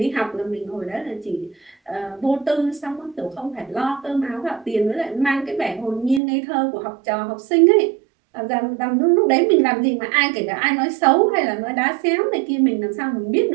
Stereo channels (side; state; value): left; drops out; at 6.2 s